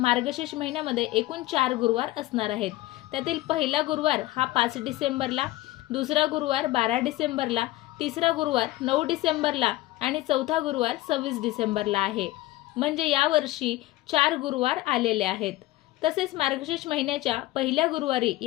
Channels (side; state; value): right; quieter; 17.5 dB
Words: महिन्यामध्ये एकूण 4 गुरुवार असणार आहेत. त्यातील पहिला गुरुवार हा 5 डिसेंबरला, दुसरा गुरुवार 12 डिसेंबरला, तिसरा गुरुवार 9 डिसेंबरला आणि चौथा गुरुवार 26 डिसेंबरला आहे. म्हणजे यावर्षी 4 गुरुवार आलेले आहेत. तसेच मार्गशीर्ष महिन्याच्या पहिल्या गुरुवारी